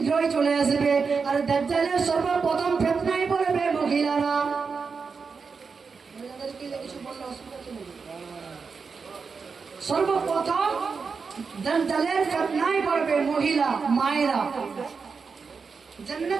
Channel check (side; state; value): left; quieter; 5.2 dB